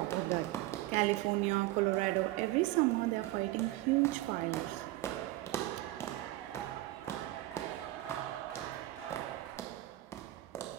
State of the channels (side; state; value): left; quieter; 17.1 dB